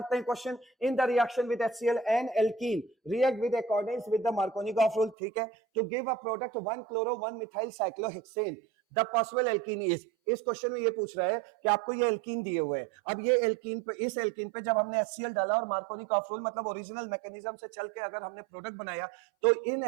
हैं question. In the reaction with HCl and alkene react with according with the Markovnikov rule, ठीक है, to give a product 1 chloro 1 methyl cyclohexane, the possible alkene is, इस क्वेश्चन में ये पूछ रहा है कि आपको ये एल्कीन दिए हुए हैं। अब ये एल्कीन पे, इस एल्कीन पे जब हमने HCl डाला और मार्कोनिकॉफ रूल मतलब ओरिजिनल मैकेनिज्म से चल के अगर हमने प्रोडक्ट बनाया, तो इन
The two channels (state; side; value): drops out; left; at 5.2 s